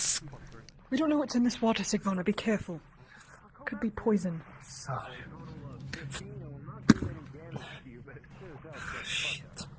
We don't know what's in this water, Sigvona. Be careful. Could be poison. Shit.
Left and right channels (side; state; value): both; identical; correlation 1.00